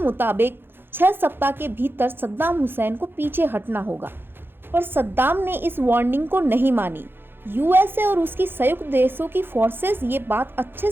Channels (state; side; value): late; left; 0.10 ms